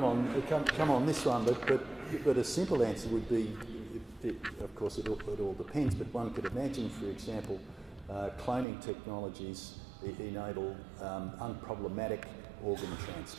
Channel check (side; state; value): left; drops out; at 8.7 s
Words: on this one, but a simple answer would be, of course, it all depends. But one could imagine, for example, cloning technologies enable unproblematic organ